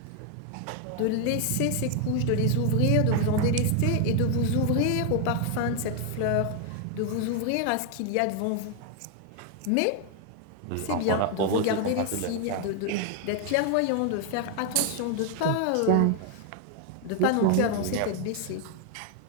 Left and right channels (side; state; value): both; different; correlation 0.00